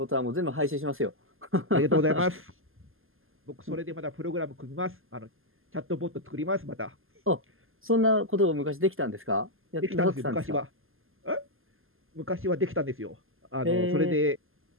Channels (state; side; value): late; left; 0.60 ms